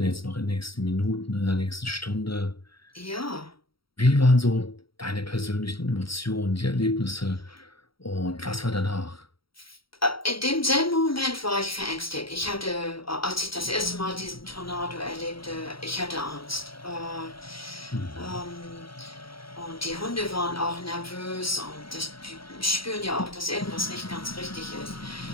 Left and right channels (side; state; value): right; late; 0.75 ms